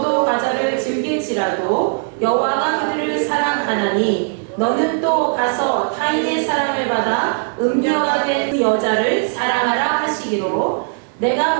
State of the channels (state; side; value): silent; left; 65 dB below the other